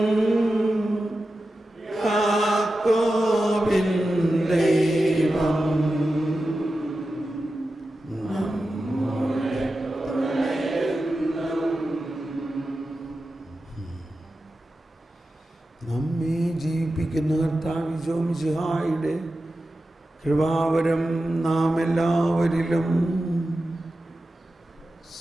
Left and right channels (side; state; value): both; normal; correlation 0.92